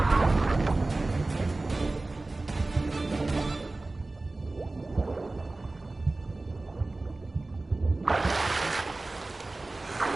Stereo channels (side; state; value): left; quieter; 3.1 dB